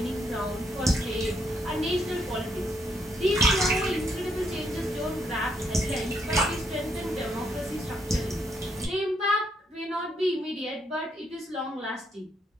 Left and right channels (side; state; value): both; normal; correlation 0.74